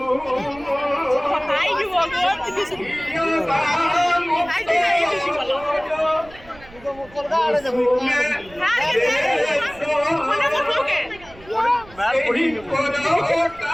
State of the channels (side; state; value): right; noise; rumble, 22 dB below the sound